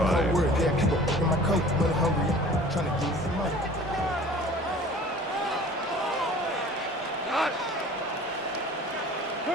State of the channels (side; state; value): both; normal; correlation 0.46